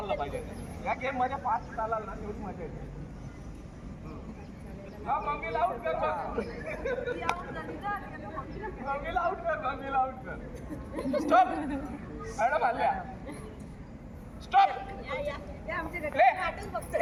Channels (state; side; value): identical; both; correlation 1.00